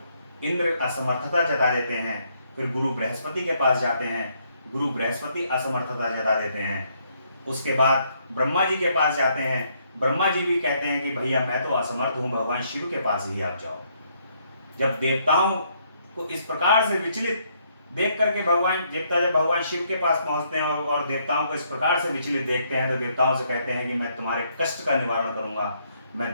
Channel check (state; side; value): inverted; both; correlation -0.71